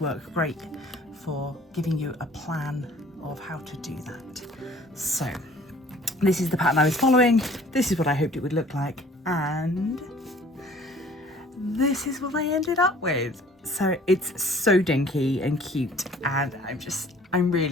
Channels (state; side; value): normal; both; correlation 0.52